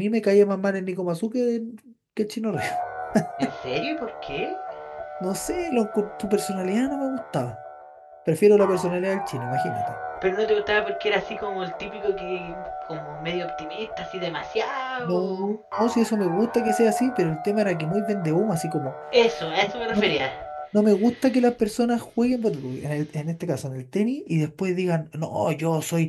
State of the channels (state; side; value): identical; both; correlation 1.00